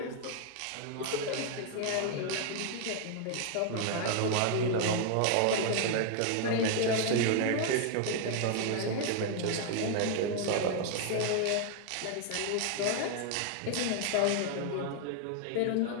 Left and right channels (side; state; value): both; different; correlation 0.00